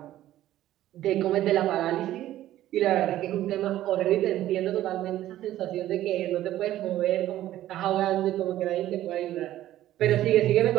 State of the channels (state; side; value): quieter; left; 13.7 dB